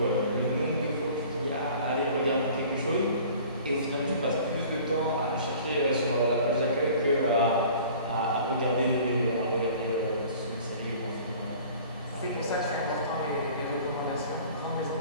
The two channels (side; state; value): both; inverted; correlation -0.47